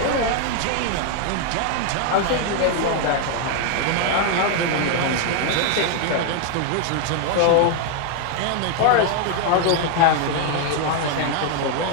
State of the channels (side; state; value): both; different; correlation 0.00